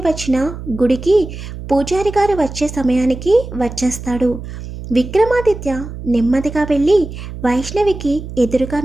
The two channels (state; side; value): noise; right; hum, 10 dB below the sound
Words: వచ్చిన గుడికి పూజారి గారు వచ్చే సమయానికి వచ్చేస్తాడు. విక్రమాదిత్య నెమ్మదిగా వెళ్ళి వైష్ణవికి ఎదురుగా